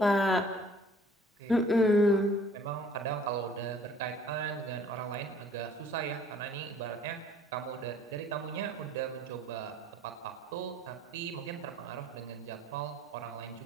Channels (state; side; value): normal; both; correlation 0.55